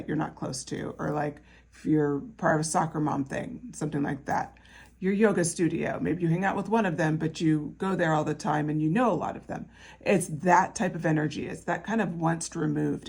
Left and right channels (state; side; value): identical; both; correlation 1.00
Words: you're not close to, or like if you're part of a soccer mom thing, something like that. Your yoga studio, maybe you hang out with one of them, but you go there all the time and you know a lot of them. It's that type of energy. It's that kind of once